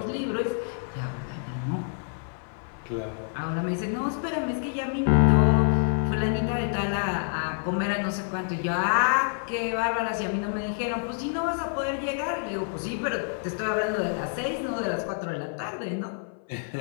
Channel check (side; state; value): right; silent; 56 dB below the other